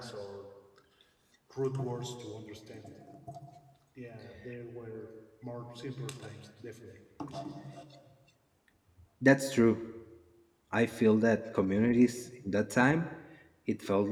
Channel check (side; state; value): both; identical; correlation 1.00